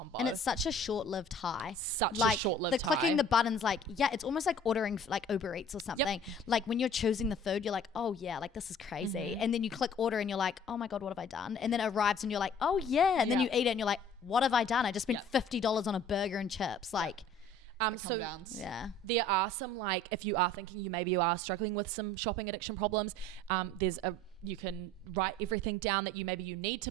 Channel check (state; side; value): normal; both; correlation 0.50